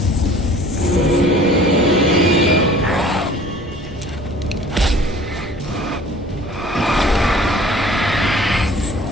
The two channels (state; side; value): normal; both; correlation 0.49